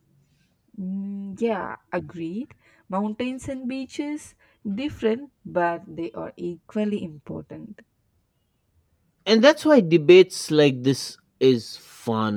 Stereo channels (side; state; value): both; identical; correlation 1.00